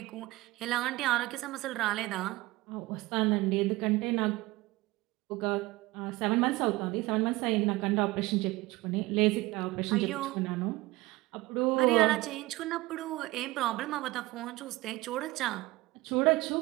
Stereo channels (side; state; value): left; quieter; 20.0 dB